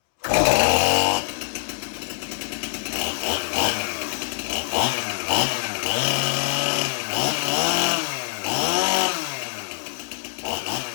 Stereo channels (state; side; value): silent; right; 63 dB below the other